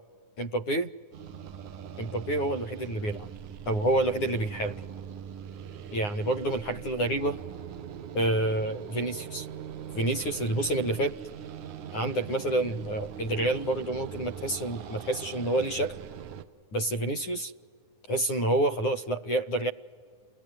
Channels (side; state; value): right; late; 9.7 ms